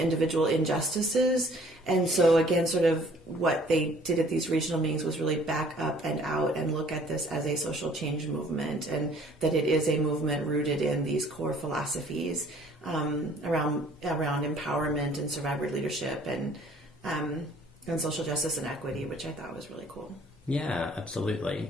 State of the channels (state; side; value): normal; both; correlation 0.56